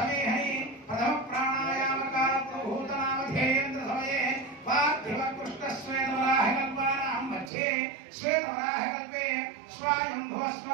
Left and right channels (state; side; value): drops out; left; at 7.5 s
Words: प्रथमप्राणायामकालप्रभूतनामधेयेन्द्रसमये पार्थिवकृष्णश्वेतवराहकल्पानां मध्ये श्वेतवराहकल्पे